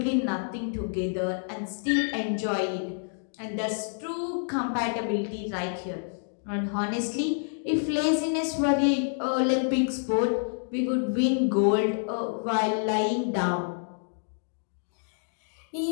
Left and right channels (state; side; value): silent; right; digital silence